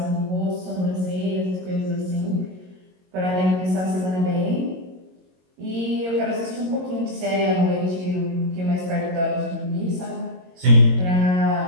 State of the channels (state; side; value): late; left; 22 ms